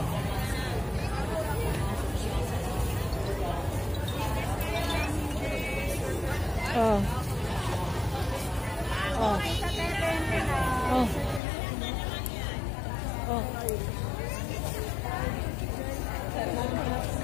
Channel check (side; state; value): right; drops out; at 11.4 s